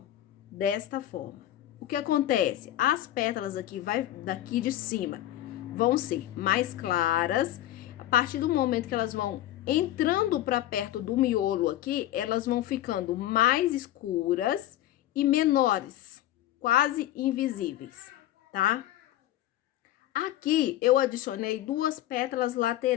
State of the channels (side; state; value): right; quieter; 13.9 dB